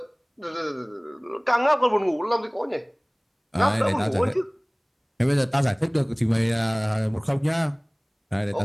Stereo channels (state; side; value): identical; both; correlation 1.00